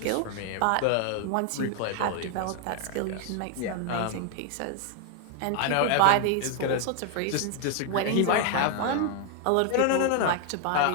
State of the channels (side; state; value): both; different; correlation 0.00